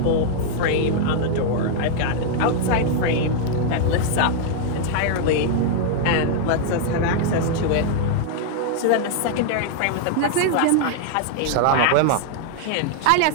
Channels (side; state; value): both; different; correlation 0.00